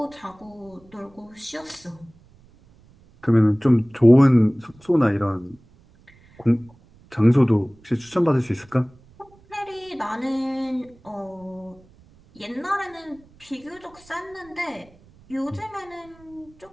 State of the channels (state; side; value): noise; right; rumble, 27 dB below the sound